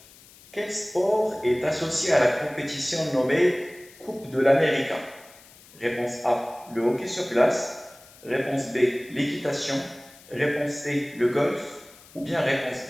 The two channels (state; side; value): noise; left; hiss, 23 dB below the sound